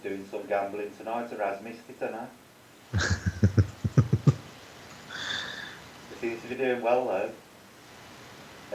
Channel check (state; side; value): identical; both; correlation 1.00